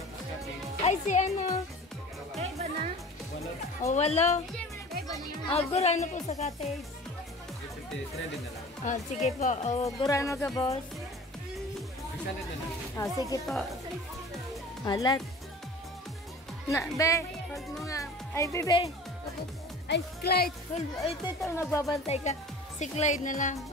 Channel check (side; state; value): both; normal; correlation 0.41